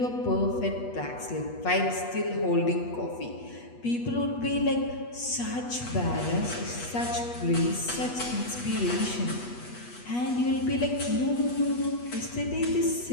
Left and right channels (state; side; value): late; right; 8.3 ms